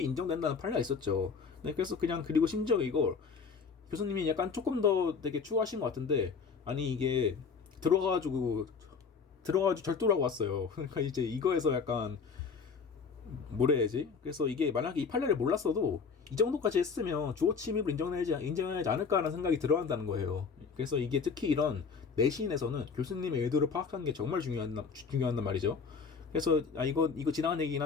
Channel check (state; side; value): quieter; right; 5.5 dB